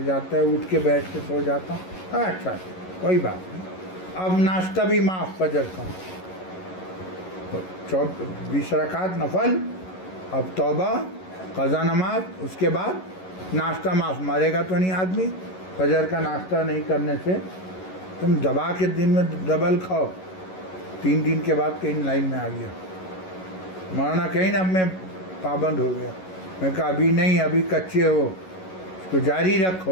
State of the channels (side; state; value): right; late; 11 ms